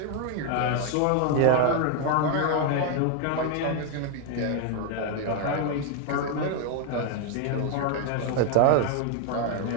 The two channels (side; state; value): both; different; correlation 0.01